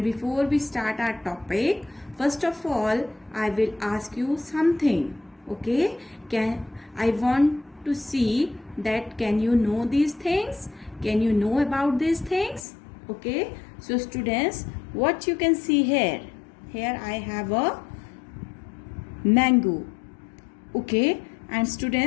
before we start our topic, first of all I will ask you something. Okay, I want to see that can you know these things, can you know about these things? Okay, so students, what you can see here I have a mango. Okay, and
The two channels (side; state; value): right; drops out; at 12.7 s